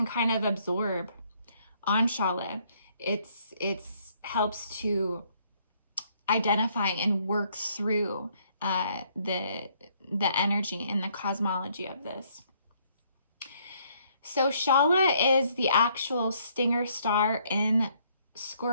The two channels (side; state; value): both; inverted; correlation -0.67